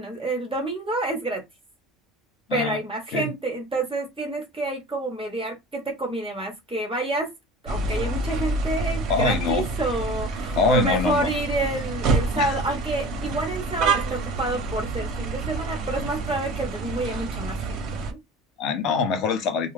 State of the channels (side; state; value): both; normal; correlation 0.39